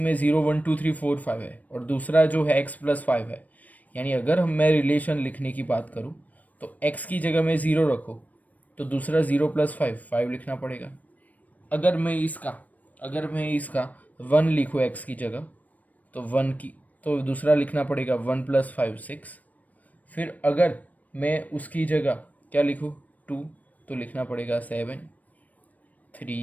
0 1 2 3 4 5 है, और दूसरा जो है x प्लस 5 है, यानी अगर मैं रिलेशन लिखने की बात करूँ तो x की जगह में 0 रखो तो दूसरा 0 प्लस 5 लिखना पड़ेगा। अगर मैं इसका 1 लिखूँ x की जगह तो 1 की, तो दूसरा लिखना पड़ेगा 1 प्लस 5 6। फिर अगर मैं उसकी जगह क्या लिखूँ 2 तो लिखना पड़ेगा 7,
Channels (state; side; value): late; right; 0.074 ms